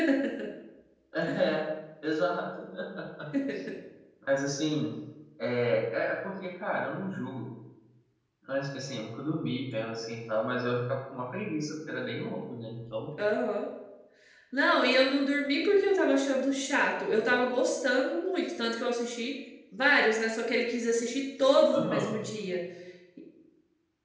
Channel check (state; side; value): identical; both; correlation 1.00